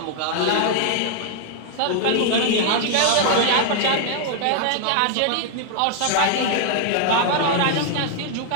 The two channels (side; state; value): both; different; correlation 0.00